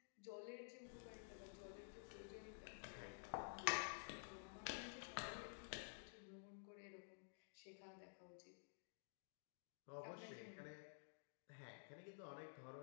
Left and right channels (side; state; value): right; silent; digital silence